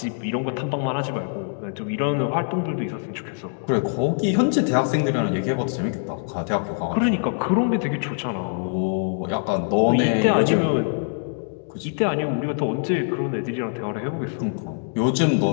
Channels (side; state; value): right; silent; digital silence